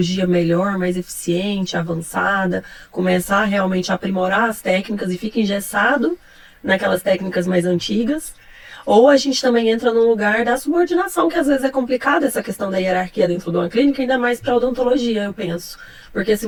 melhor, mais eficiente, avançada, começar realmente a aprimorar as técnicas e fica engessado naquelas técnicas mais antigas. Ou a gente também entra num lugar da subordinação, que às vezes é complicado essa questão da hierarquia dentro de uma clínica, ainda mais para odontologia, eu penso. Porque se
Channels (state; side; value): identical; both; correlation 1.00